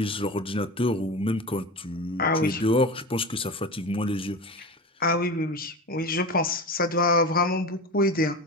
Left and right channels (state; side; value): normal; both; correlation 0.28